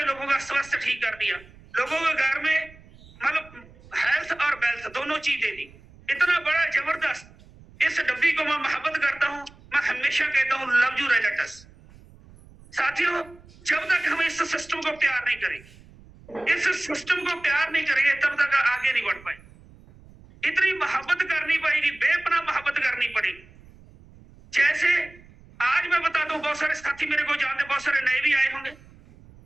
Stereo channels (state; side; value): noise; right; rumble, 24 dB below the sound